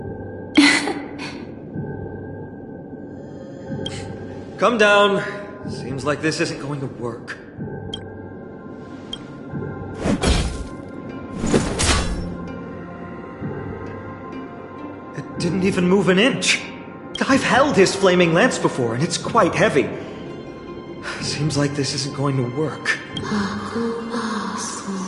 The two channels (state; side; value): identical; both; correlation 1.00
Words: Come down. Seems like this isn't going to work. It didn't even move an inch. I've held his flaming lance before, and it's quite heavy. Seems like this isn't going to work.